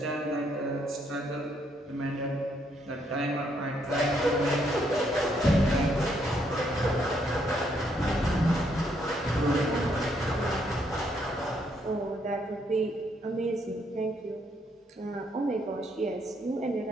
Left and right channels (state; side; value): normal; both; correlation 0.73